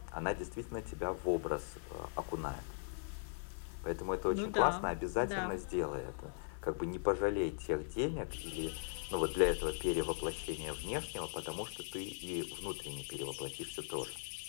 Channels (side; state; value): right; silent; 51 dB below the other